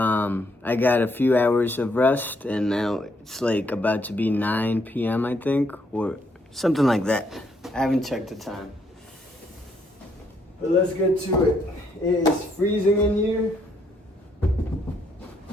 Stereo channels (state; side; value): normal; both; correlation 0.72